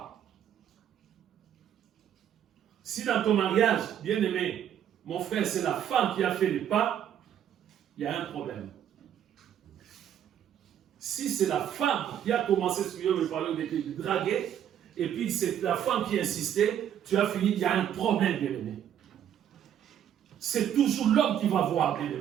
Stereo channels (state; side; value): quieter; left; 9.9 dB